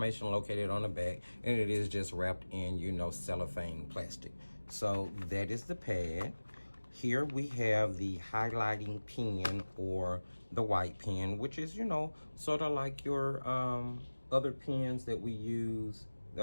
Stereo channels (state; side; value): inverted; both; correlation -1.00